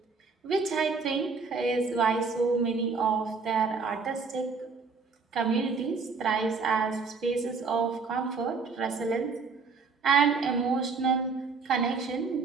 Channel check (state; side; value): quieter; left; 4.7 dB